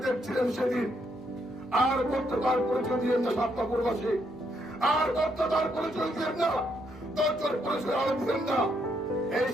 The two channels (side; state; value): both; normal; correlation 0.75